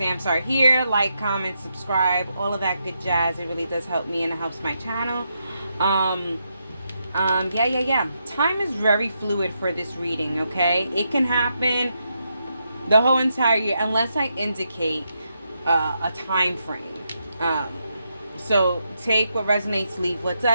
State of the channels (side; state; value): both; inverted; correlation -0.82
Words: are here. Like, comment, subscribe, all of that good jazz. It really does help me and it helps my channel. Yeah. Time is very fluid for this reading. Okay, it can happen the whole entire year unless I indicate a time frame. So take what resonates, leave what